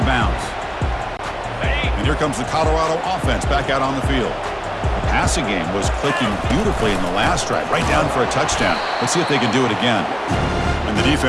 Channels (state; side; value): identical; both; correlation 1.00